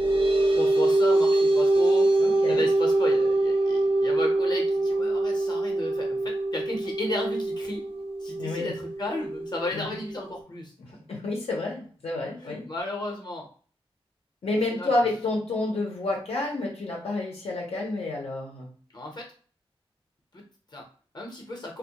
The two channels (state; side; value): normal; both; correlation 0.87